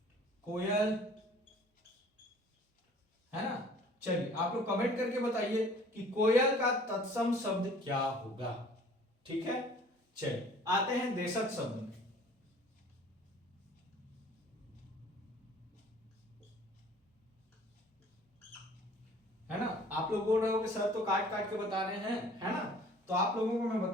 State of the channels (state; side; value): normal; both; correlation 0.52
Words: कोयल, है ना। चलिए आप लोग कमेंट करके बताइए कि कोयल का तत्सम शब्द क्या होगा। ठीक है, चलिए आते हैं देशज शब्द में। है ना, आप लोग बोल रहे हो कि सर तो काट काट के बता रहे हैं, है ना, तो आप लोगों को मैं